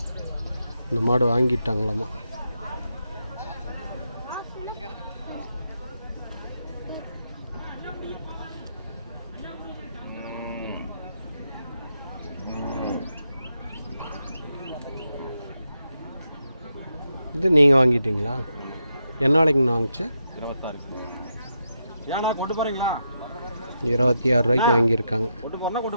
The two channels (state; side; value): inverted; both; correlation -0.84